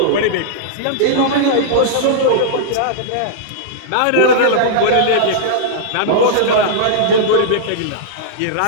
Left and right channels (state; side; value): different; both; correlation -0.02